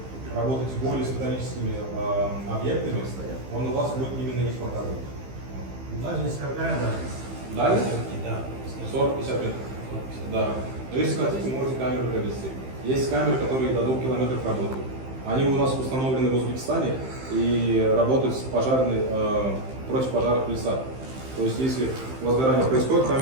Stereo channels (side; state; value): left; late; 15 ms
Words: работаете более с металлическими объектами, он у вас будет именно их показывать. Дальность какая дальность? Дальность? Да. 40-50 метров. Да. Но если хотите, можете камеру провести. Есть камеры, которые до 2 километров работают. Они у нас установлены в Узбекистане и работают с пожарной, против пожаров леса. То есть если возгорание происходит,